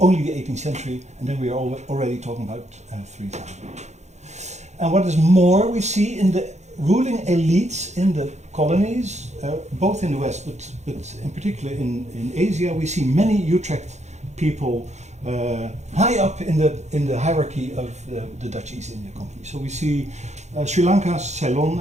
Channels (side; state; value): left; late; 0.33 ms